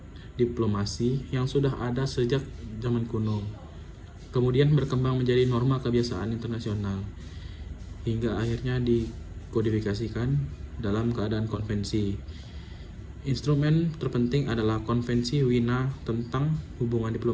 diplomasi yang sudah ada sejak zaman kuno, kemudian berkembang menjadi norma kebiasaan internasional, hingga akhirnya dikodifikasikan dalam keadaan konvensi. Instrumen terpenting adalah Konvensi Wina tentang Hubungan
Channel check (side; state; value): both; identical; correlation 1.00